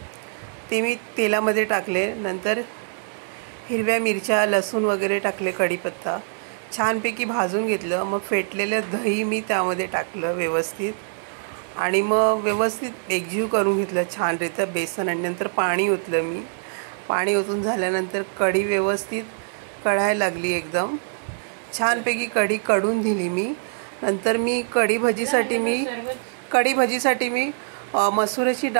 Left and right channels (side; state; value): left; silent; digital silence